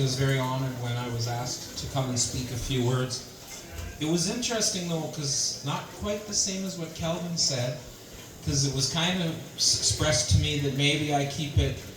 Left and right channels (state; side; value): identical; both; correlation 1.00